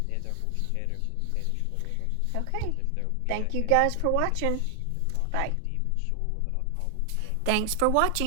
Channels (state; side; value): different; both; correlation 0.00